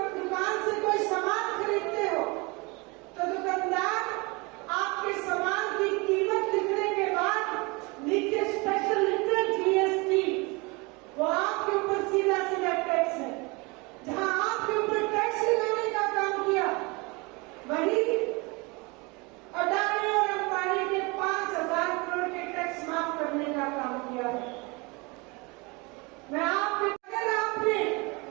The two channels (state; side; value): quieter; left; 27.1 dB